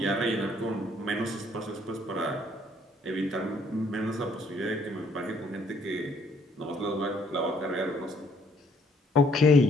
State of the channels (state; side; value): normal; both; correlation 0.65